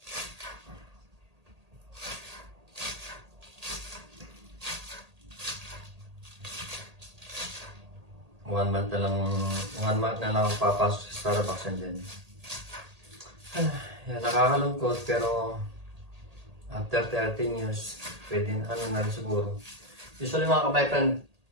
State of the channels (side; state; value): left; late; 1.8 ms